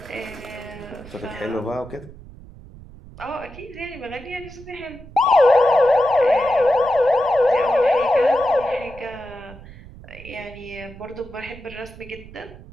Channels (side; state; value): right; noise; rumble, 18 dB below the sound